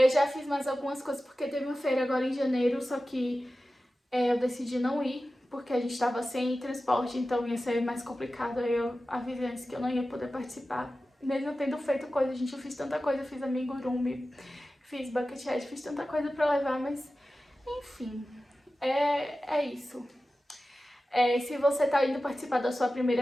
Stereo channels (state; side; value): normal; both; correlation 0.95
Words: já fiz mais algumas coisas porque teve uma feira agora em janeiro, só que eu decidi não ir, porque a gente tava sem transporte, então ia ser mais complicado. Aí eu avisei antes que eu não ia poder participar. Mesmo tendo feito coisa, gente, eu fiz tanta coisa, eu fiz amigurumi, fiz bucket hat, fiz tanta coisa pra levar, mas enfim, é isso. Se você tá indo participar da sua